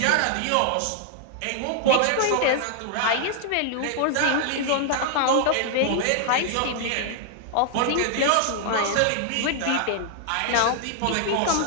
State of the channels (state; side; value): different; both; correlation 0.00